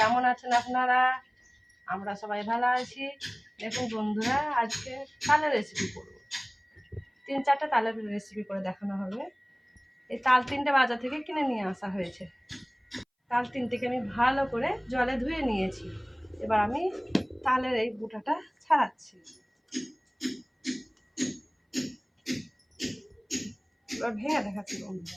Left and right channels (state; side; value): identical; both; correlation 1.00